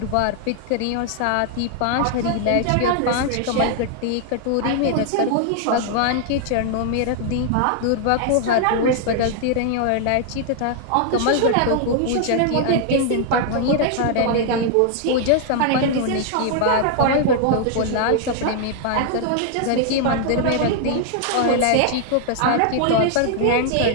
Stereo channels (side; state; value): both; different; correlation 0.00